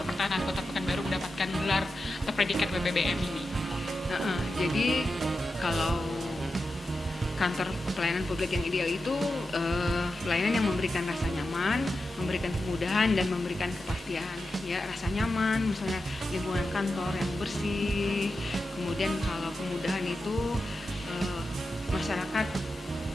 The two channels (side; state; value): both; normal; correlation 0.90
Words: pertahanan Kota Pekanbaru mendapatkan gelar atau predikat WBBM ini. Jadi kalau kantor pelayanan publik yang ideal itu pelayanan yang memberikan rasa nyaman, memberikan kemudahan dan memberikan kepastian. Ya, rasa nyaman, misalnya lingkungan kantor yang bersih. Kemudian kalau kemudahan itu masyarakat